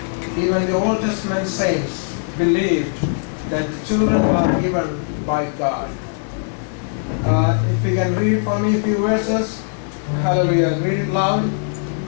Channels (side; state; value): right; silent; 66 dB below the other